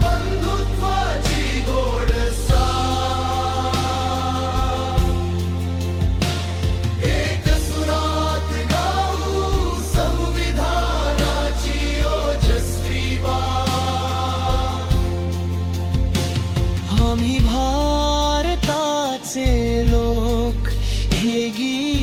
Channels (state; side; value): identical; both; correlation 1.00